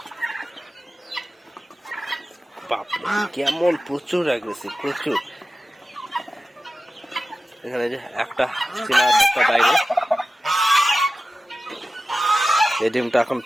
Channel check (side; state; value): both; normal; correlation 0.94